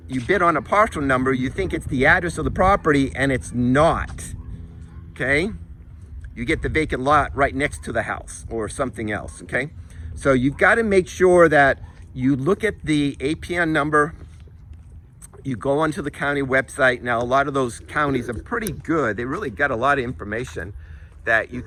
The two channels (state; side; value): identical; both; correlation 1.00